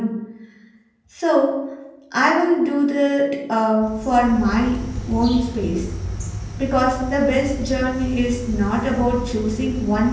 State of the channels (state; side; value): identical; both; correlation 1.00